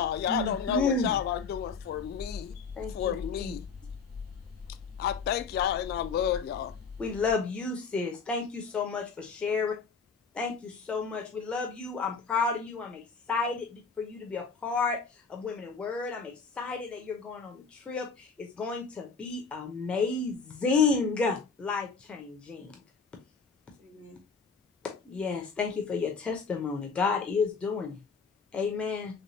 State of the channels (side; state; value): right; quieter; 5.1 dB